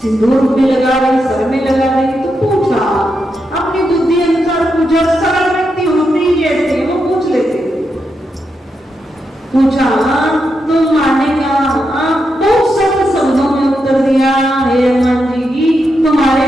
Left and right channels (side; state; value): both; normal; correlation 0.84